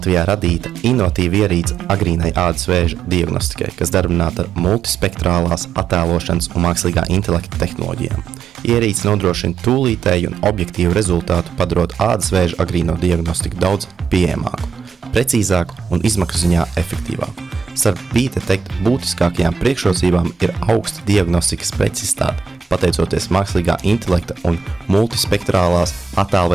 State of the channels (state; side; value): quieter; left; 6.1 dB